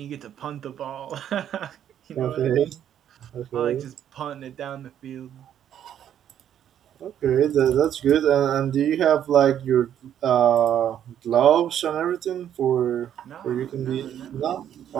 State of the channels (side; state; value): left; quieter; 10.1 dB